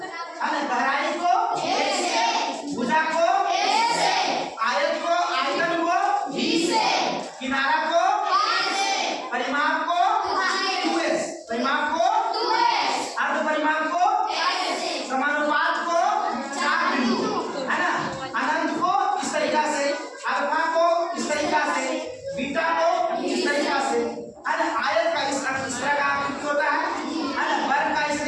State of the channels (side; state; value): both; identical; correlation 1.00